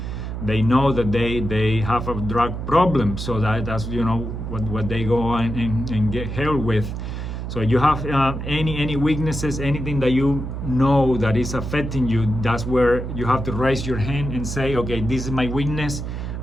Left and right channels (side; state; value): right; noise; hum, 5 dB below the sound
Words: they know that they have a drug problem, so that's what they go and get help with. So you have any weaknesses, anything that you know that is affecting you, that's where you have to raise your hand and say, okay, this is my weakness,